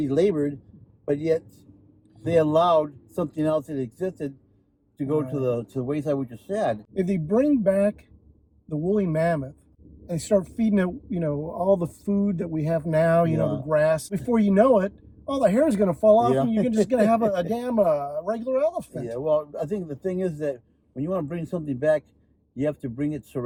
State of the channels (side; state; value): both; identical; correlation 1.00